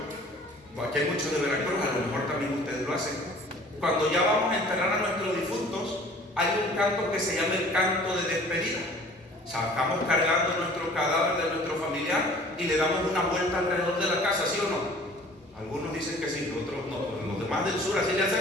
aquí hay muchos de Veracruz, a lo mejor también ustedes lo hacen. Cuando ya vamos a enterrar a nuestros difuntos, hay un canto que se llama el canto de despedida. Sacamos cargando nuestro cadáver de nuestro familiar y le damos una vuelta alrededor de la casa, ¿sí o no? Algunos dicen que sí, otros no. Los demás del sur así le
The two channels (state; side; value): normal; both; correlation 0.49